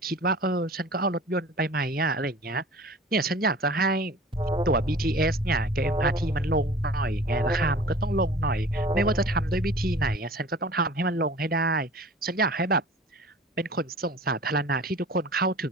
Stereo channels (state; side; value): normal; both; correlation 0.44